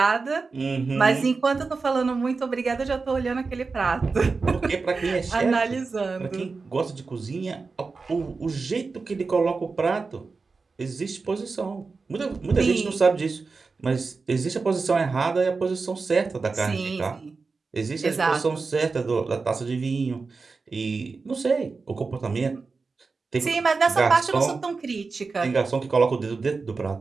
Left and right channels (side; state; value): left; quieter; 4.3 dB